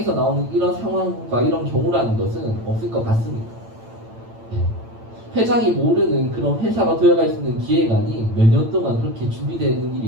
나오는 이런 상황과 이런 경우라는 것은 없을 것 같습니다. 회장이 모르는 그런 회사가 도약할 수 있는 기획안이 몇 년 동안 그렇게 준비되는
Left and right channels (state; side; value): late; left; 8.9 ms